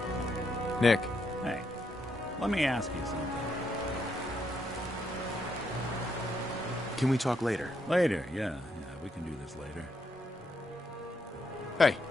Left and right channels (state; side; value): normal; both; correlation 0.77